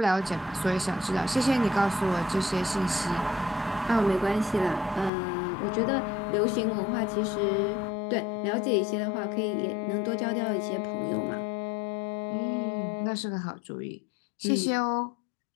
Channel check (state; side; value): drops out; right; at 5.1 s